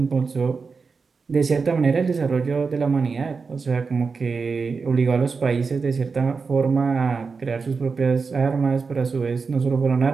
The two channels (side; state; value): left; quieter; 4.9 dB